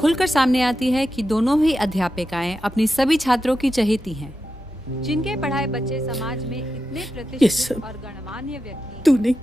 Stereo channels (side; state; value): both; normal; correlation 0.89